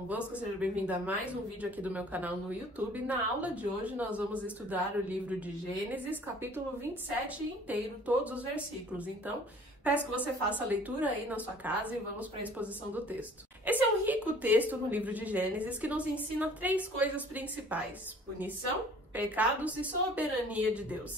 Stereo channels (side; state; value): both; normal; correlation 0.52